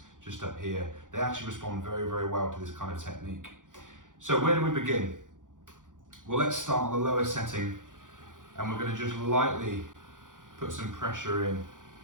just up here. They actually respond very, very well to this kind of technique. So where do we begin? Well, let's start on the lower setting, and we're going to just lightly put some pressure in.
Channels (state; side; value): late; left; 0.88 ms